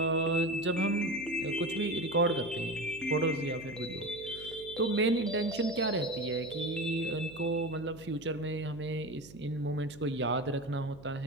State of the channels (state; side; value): noise; right; hum, 19 dB below the sound